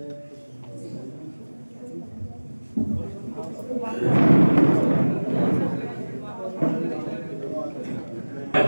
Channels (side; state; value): both; inverted; correlation -1.00